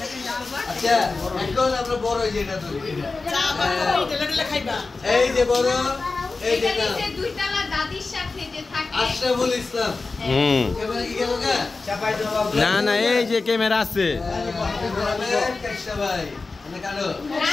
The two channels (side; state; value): right; quieter; 3.8 dB